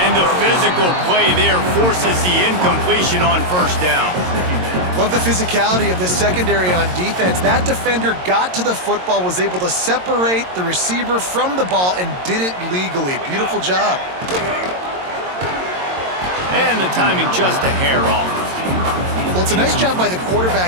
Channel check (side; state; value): left; late; 22 ms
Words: the physical play there forces the incompletion on first down. Love the physicality of this secondary on defense. That defender got to the football, was able to separate the receiver from the ball, and did it legally. Beautiful job. And the timing just a hair off. Well, it's a nice job by the